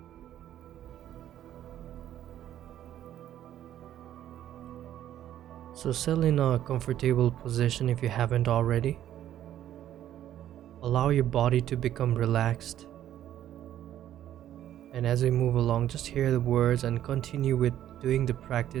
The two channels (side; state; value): left; quieter; 11.7 dB